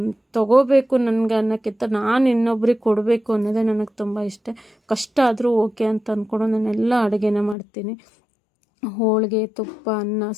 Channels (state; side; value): drops out; right; at 7.6 s